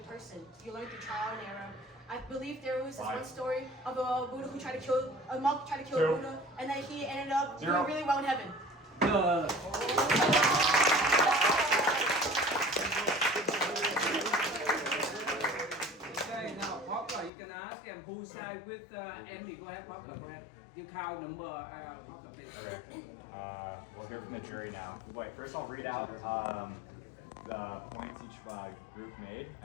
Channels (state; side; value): drops out; right; at 17.3 s